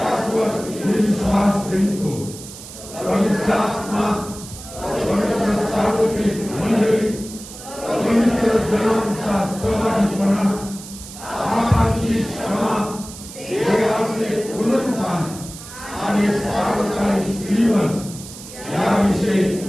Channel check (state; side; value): noise; right; hiss, 14 dB below the sound